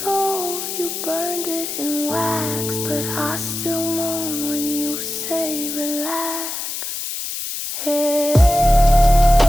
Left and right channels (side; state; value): left; noise; hiss, 5 dB below the sound